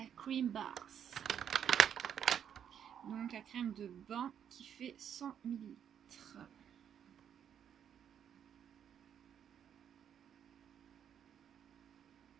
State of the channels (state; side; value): quieter; left; 8.8 dB